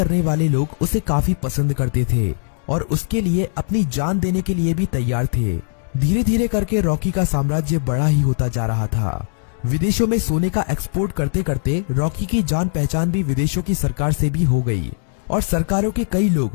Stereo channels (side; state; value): right; silent; digital silence